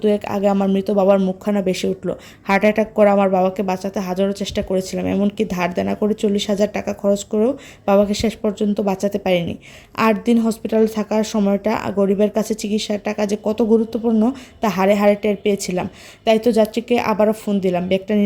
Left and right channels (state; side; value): identical; both; correlation 1.00